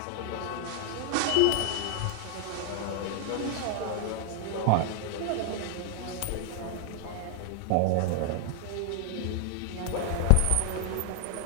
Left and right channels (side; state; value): both; different; correlation 0.00